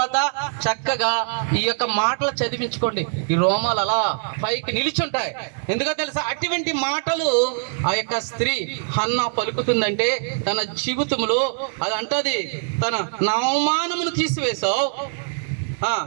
చక్కగా ఈ యొక్క మాటలు చదివించుకోండి. ఈ రోమాలు అలా పైకి నిలిచుంటాయి. ఎందుకో తెలుసా? అటువంటి మాటలు ఆ యొక్క స్త్రీ హన్నా పలుకుతుందంటే తన జీవితంలో అది అంటది, తన అవమానమును తీసివేశావు.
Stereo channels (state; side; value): silent; left; digital silence